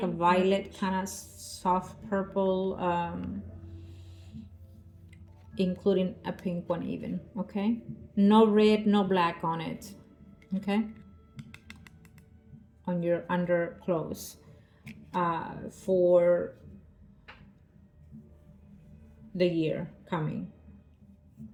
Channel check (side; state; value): both; identical; correlation 1.00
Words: a violet, kind of soft purple, including a pink one even. Okay, no red, no black on it. Okay, on your underclothes, for the year coming,